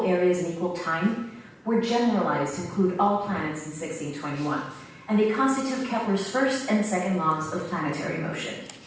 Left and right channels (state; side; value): identical; both; correlation 1.00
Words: areas in equal time, were generalized to include all planets in 1621, and they constitute Kepler's first and second laws of planetary motion.